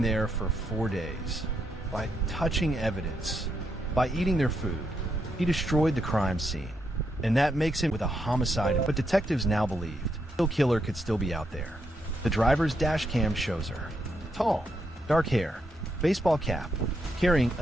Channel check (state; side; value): normal; both; correlation 0.80